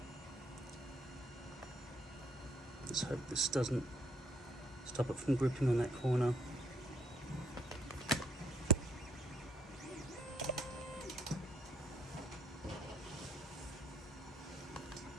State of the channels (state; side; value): normal; both; correlation 0.69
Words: Let's hope this doesn't stop it from gripping on that corner.